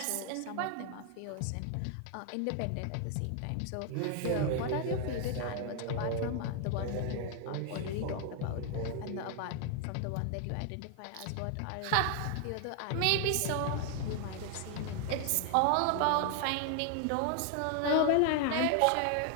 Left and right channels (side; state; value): both; different; correlation 0.00